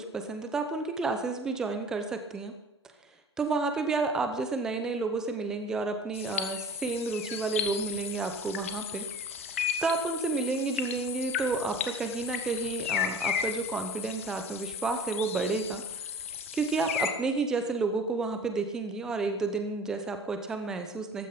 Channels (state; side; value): normal; both; correlation 0.43